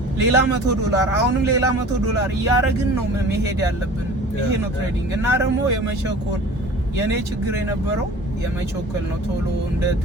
ሌላ $100 አሁንም ሌላ $100 እያረግን ነው መሄድ ያለብን። ይሄ ነው ትሬዲንግ እና ደግሞ የመቸኮል የኔ ችግር የነበረው የመቸኮል ነው። ቶሎ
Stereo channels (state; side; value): normal; both; correlation 0.43